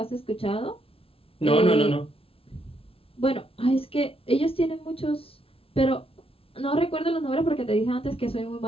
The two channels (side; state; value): right; late; 0.27 ms